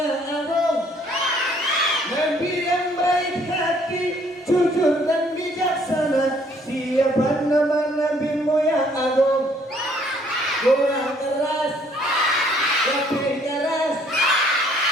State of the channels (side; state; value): both; normal; correlation 0.63